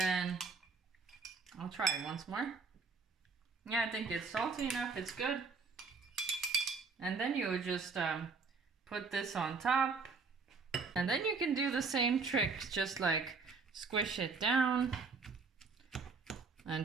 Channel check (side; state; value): left; quieter; 4.5 dB